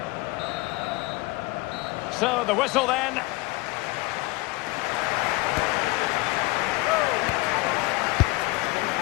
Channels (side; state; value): right; quieter; 22.5 dB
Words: So the whistle then.